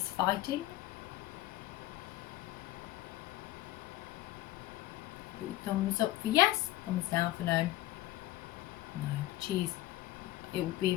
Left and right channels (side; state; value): right; quieter; 15.9 dB